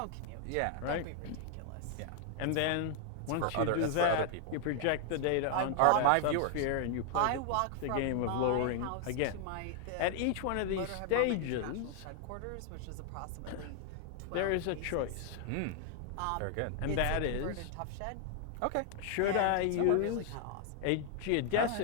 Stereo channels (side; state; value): both; different; correlation 0.00